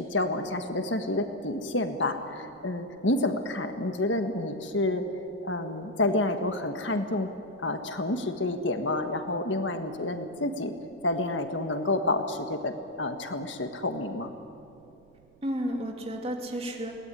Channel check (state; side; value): noise; right; rumble, 28 dB below the sound